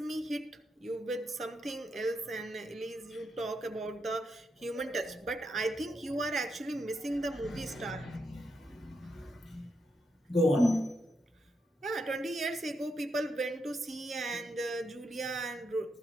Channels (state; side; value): normal; both; correlation 0.82